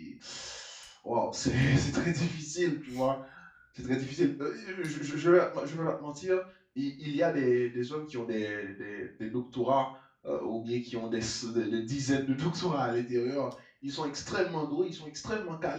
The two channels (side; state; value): both; identical; correlation 1.00